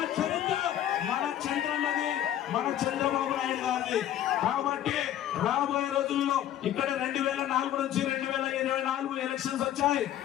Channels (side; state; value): right; quieter; 11.7 dB